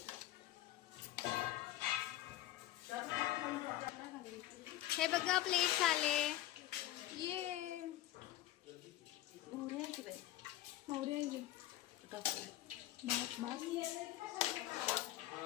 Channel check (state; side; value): quieter; right; 14.5 dB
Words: हे बघा प्लेट झाले. ये मोहरी आहे की बाई मोहरी आहे. टाकू. बस बस